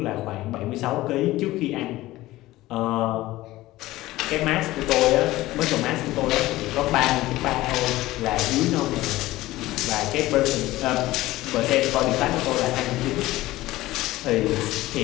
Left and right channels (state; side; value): quieter; right; 17.3 dB